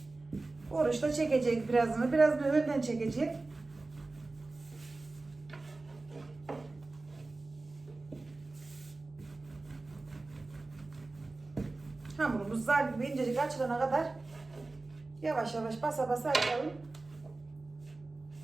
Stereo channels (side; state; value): left; quieter; 3.3 dB